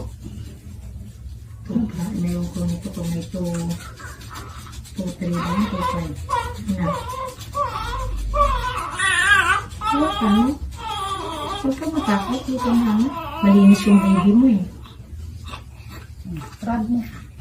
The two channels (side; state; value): both; identical; correlation 1.00